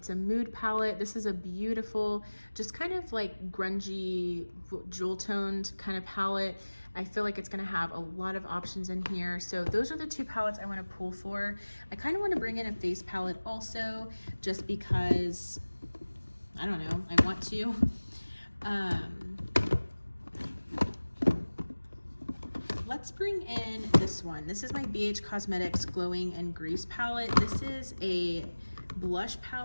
a mood palette. This is a beautiful, just kind of like grungy, jewel toned kind of palette. I feel like it's going to have a lot of options in here. So those are the two palettes I want to pull for. I kind of want to bring in a face palette also, just because, I don't know, I want to. Let's bring in this one. This is my BH Cosmetics Glowing and Grease palette. This is a blush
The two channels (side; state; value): both; inverted; correlation -1.00